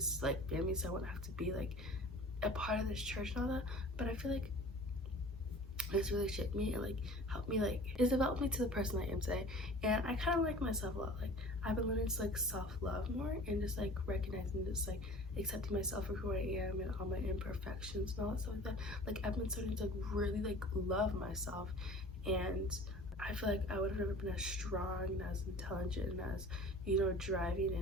like family, so I wouldn't have to be like a part of this church and all that. But I feel like it's really shaped me and like helped me, like it's developed me to the person I am today. And I kind of like myself a lot. Like I've been learning to like self-love more, and just like recognizing, just like accepting myself for who I am and all my imperfections and all that stuff like that. Like I've been starting to like really like love myself, and I feel like I would have never been as strong and as intelligent and as, you know, driving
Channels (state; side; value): normal; both; correlation 0.44